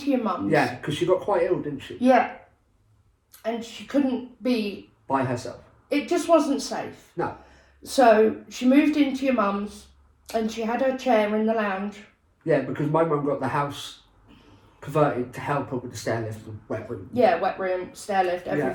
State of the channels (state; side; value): identical; both; correlation 1.00